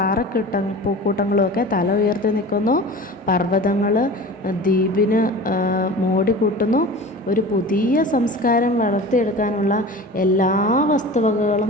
പൂക്കൂട്ടങ്ങളും ഒക്കെ തല ഉയർത്തി നിൽക്കുന്നു. പർവ്വതങ്ങൾ ദ്വീപിന് മോടി കൂട്ടുന്നു. ഒരു പുതിയ സംസ്കാരം വളർത്തിയെടുക്കാനുള്ള എല്ലാ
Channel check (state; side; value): normal; both; correlation 0.37